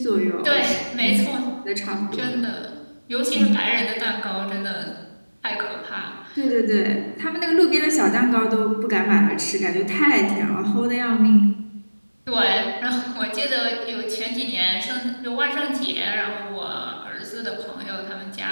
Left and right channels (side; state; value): both; inverted; correlation -1.00